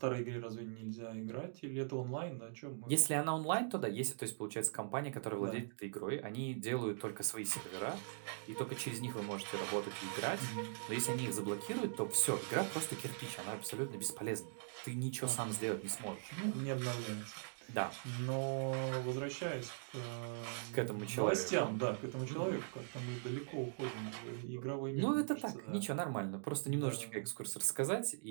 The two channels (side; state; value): left; silent; digital silence